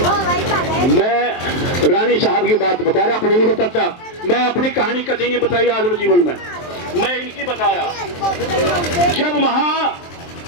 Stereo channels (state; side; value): late; right; 23 ms